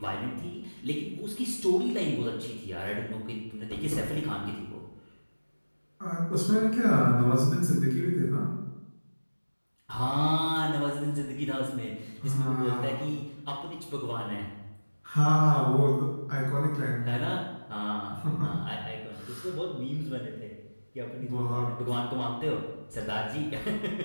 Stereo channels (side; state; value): both; inverted; correlation -1.00